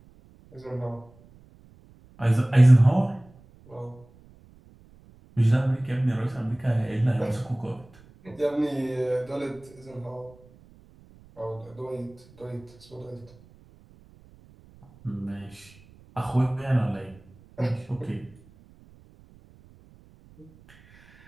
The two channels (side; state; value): right; noise; rumble, 26 dB below the sound